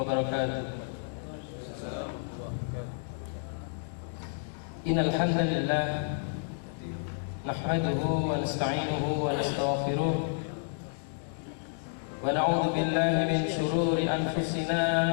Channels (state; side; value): silent; right; digital silence